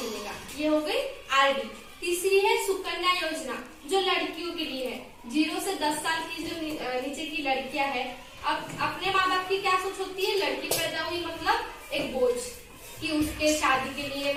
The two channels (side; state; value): both; identical; correlation 1.00